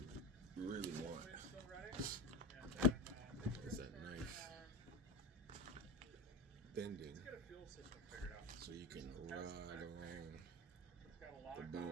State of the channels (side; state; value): both; normal; correlation 0.21